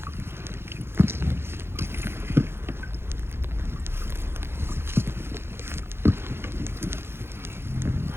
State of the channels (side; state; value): left; late; 0.12 ms